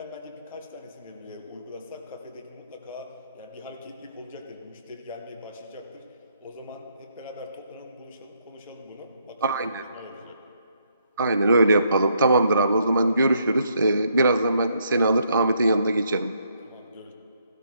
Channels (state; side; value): inverted; both; correlation -0.72